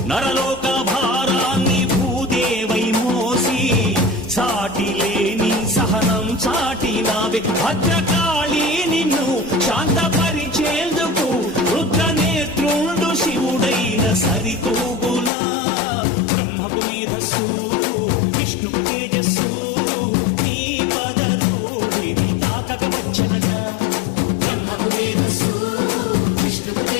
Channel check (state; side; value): drops out; right; at 15.3 s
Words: నరలోక భారాన్ని భూదేవై మోసి సాటి లేని సహనం చాటినావే. భద్రకాళి నిన్ను శాంతపరిచేందుకు రుద్రనేత్రుండు శివుడైన సరితూగులా. బ్రహ్మకు మేధస్సు విష్ణుకు తేజస్సు, నీ పదధూళిని తాకక వచ్చనట. బ్రహ్మకు మేధస్సు విష్ణుకు